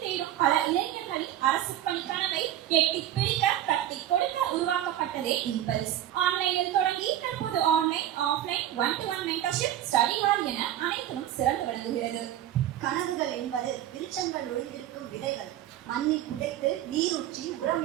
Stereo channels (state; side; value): quieter; left; 12.1 dB